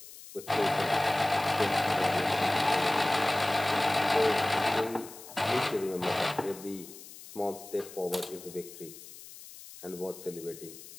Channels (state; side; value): noise; left; hiss, 16 dB below the sound